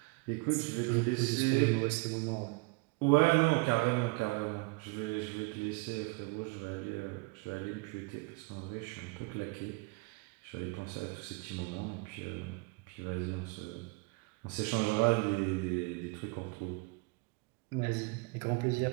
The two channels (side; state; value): left; quieter; 27.8 dB